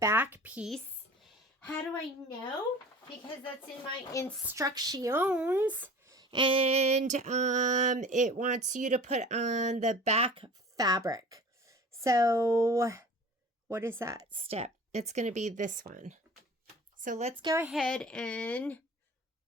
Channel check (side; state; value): both; normal; correlation 0.42